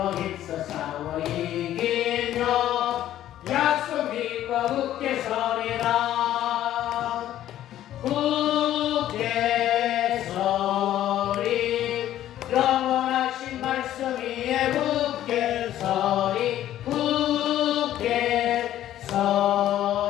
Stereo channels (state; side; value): quieter; right; 12.5 dB